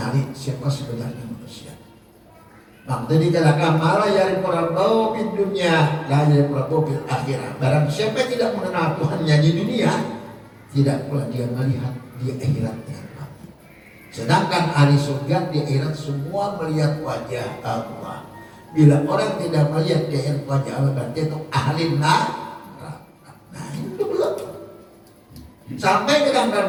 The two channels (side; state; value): both; identical; correlation 1.00